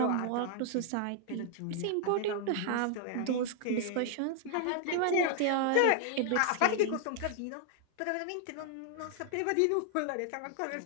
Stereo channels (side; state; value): both; different; correlation 0.00